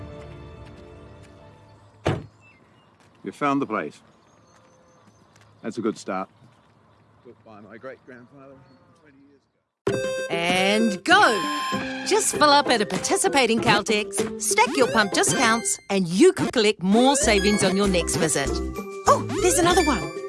You found the place. That's a good start. Built by my great-grandfather 20 years ago. And go! Just fill up at a participating Caltex, stack your pump discounts, and you could collect more savings on your next visit. Oh, there's another one.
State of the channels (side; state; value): both; identical; correlation 1.00